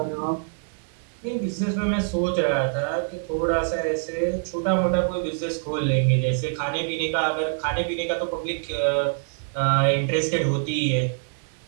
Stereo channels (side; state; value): left; silent; digital silence